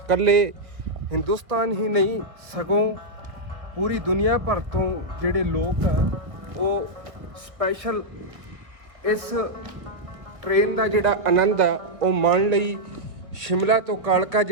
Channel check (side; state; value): left; late; 1.6 ms